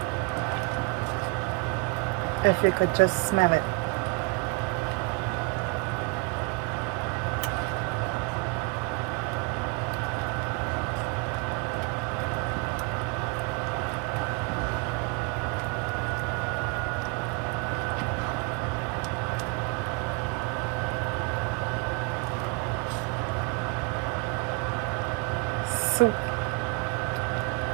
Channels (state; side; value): quieter; left; 30.0 dB